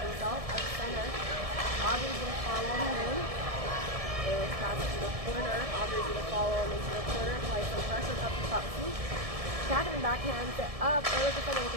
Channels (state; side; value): late; left; 1.7 ms